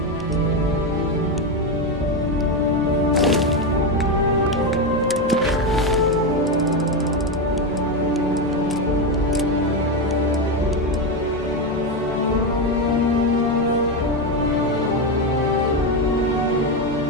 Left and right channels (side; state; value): both; normal; correlation 0.10